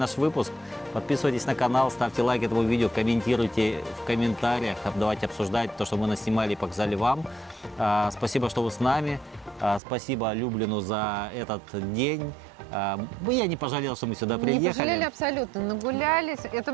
выпуск. Подписывайтесь на канал, ставьте лайк этому видео, комментируйте в комментариях, давайте обсуждать то, что мы наснимали и показали вам. Спасибо, что вы с нами. Спасибо Люблину за этот день. Я не пожалел, что мы сюда приехали. Не пожалели абсолютно, нагулялись. Это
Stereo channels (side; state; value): left; drops out; at 9.8 s